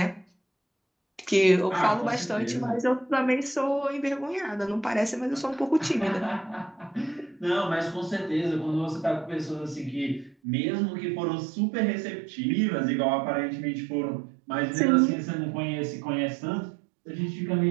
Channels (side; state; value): left; drops out; at 10.4 s